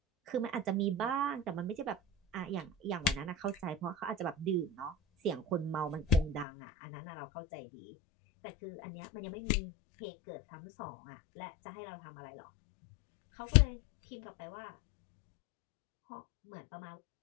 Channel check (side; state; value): right; drops out; at 6.5 s